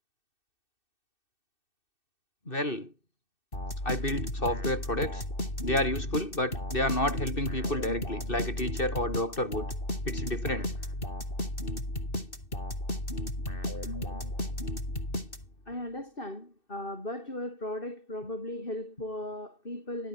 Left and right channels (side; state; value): right; late; 2.6 ms